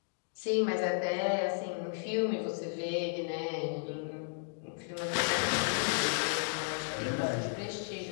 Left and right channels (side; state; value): right; silent; digital silence